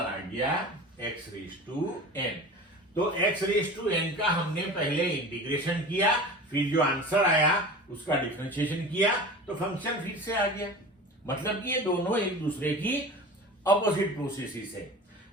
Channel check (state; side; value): normal; both; correlation 0.36